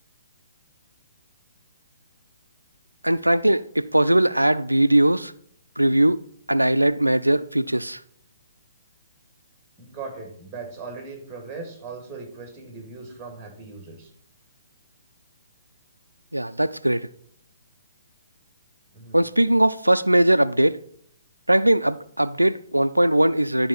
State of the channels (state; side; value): inverted; both; correlation -0.98